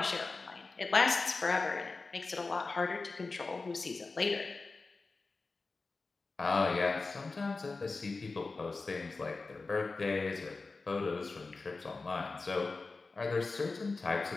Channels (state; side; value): quieter; right; 3.8 dB